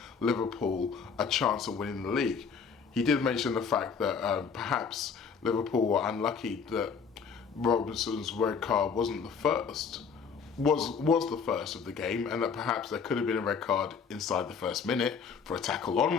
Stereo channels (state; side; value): quieter; right; 6.0 dB